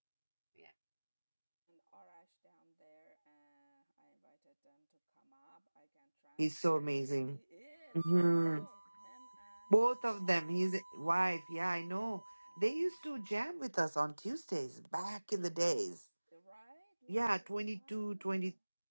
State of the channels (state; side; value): inverted; both; correlation -1.00